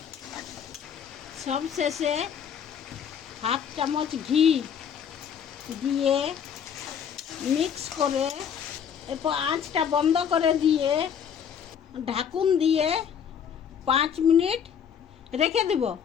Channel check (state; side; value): quieter; right; 7.9 dB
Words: সব শেষে হাফ চামচ ঘি দিয়ে মিক্স করে এরপর আঁচটা বন্ধ করে দিয়ে ঢাকুন দিয়ে 5 মিনিট রেখে দেব।